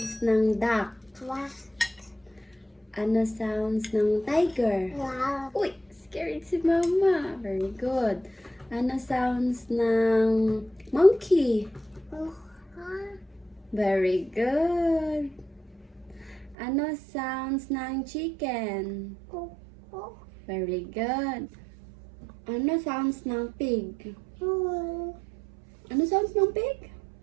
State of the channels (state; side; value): drops out; left; at 16.6 s